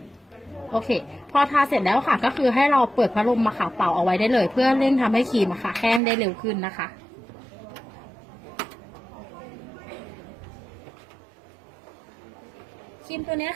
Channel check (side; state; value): left; drops out; at 6.0 s